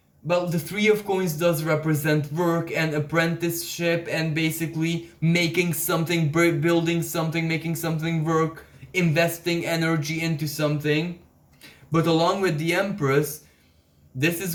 well, the Three of Coins does represent work and apprenticeship and basically making something, building something, making something work, investing energy into something. But along with the Empress, this is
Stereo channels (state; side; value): identical; both; correlation 1.00